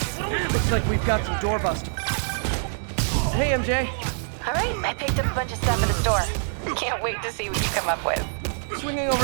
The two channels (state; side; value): silent; left; digital silence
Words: Looks like we've got some doorbusters. Hey, MJ. All right, I picked up a bunch of stuff at the store. Can't wait to see what you come up with. Swinging